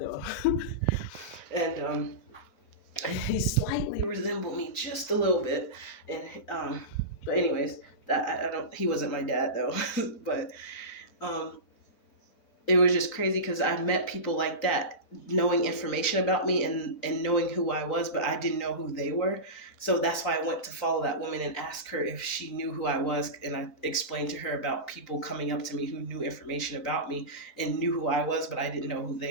And he slightly resembled me just a little bit. And but anyways, that I don't. He wasn't my dad though. But um, it was just crazy because I met people like that, knowing information about me and knowing who I was, but I didn't know who they were. So that's why I went to follow that woman and ask her if she knew who I was. And I explained to her about people coming up to me who knew information about me and knew who I was, but I didn't know who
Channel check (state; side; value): late; right; 4.0 ms